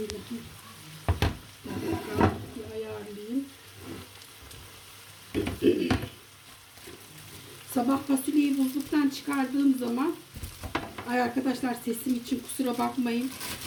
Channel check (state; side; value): identical; both; correlation 1.00